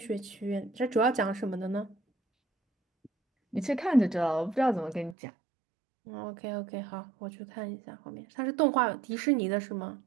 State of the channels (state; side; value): drops out; left; at 5.2 s